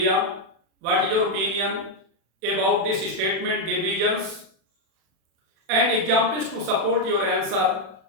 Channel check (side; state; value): left; late; 36 ms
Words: What is your opinion about this statement, divergence, and examples to support your answer?